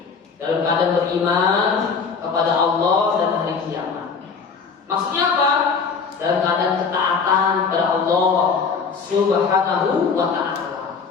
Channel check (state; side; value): quieter; right; 5.4 dB